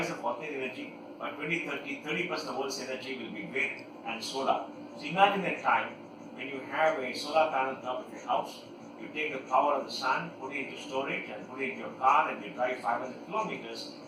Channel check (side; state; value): both; identical; correlation 1.00